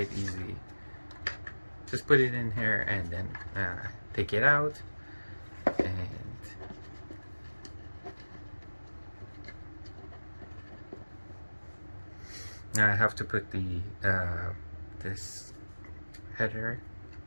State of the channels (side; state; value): both; inverted; correlation -1.00